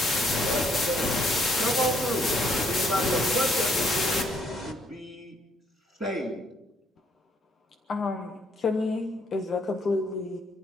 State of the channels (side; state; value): both; normal; correlation 0.68